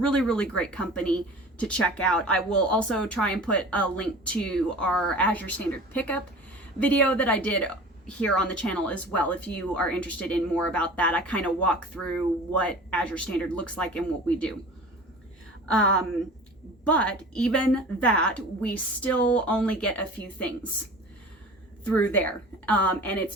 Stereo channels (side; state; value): both; normal; correlation 0.40